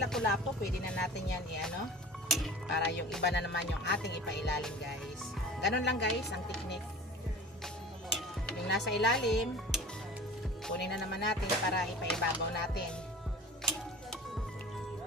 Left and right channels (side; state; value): both; normal; correlation 0.40